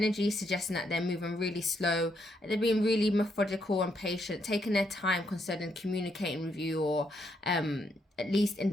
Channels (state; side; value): normal; both; correlation 0.76